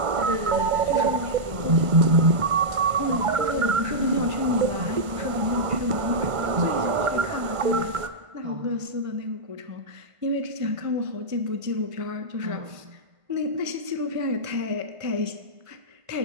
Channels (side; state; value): left; late; 1.5 ms